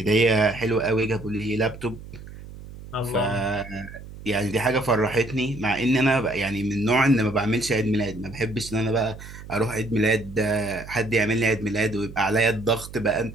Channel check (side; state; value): right; noise; hum, 15 dB below the sound